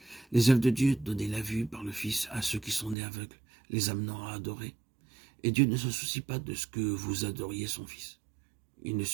Les œuvres de Dieu, donner la vue par le Fils à ceux qui sont nés aveugles, les amenant à adorer. Et Dieu ne se soucie pas de ce que vous adoriez son Fils. Il ne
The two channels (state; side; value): drops out; left; at 3.0 s